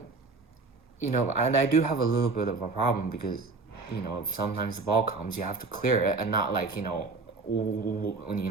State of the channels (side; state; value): left; quieter; 4.0 dB